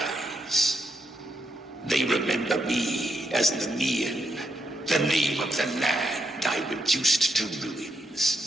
They remember me as Nemean, the name of the land I reduced to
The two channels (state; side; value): normal; both; correlation 0.79